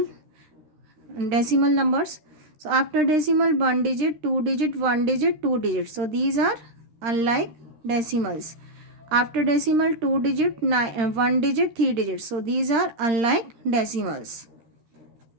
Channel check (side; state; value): left; late; 13 ms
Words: numbers. So after decimal 1 digit 2 digit 1 digit 2 digit. So these are unlike decimals. After decimal 2 digit 1 digit 3 digits. So these are unlike decimals.